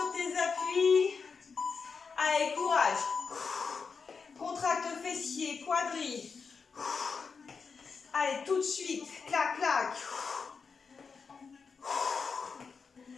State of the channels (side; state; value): right; quieter; 5.3 dB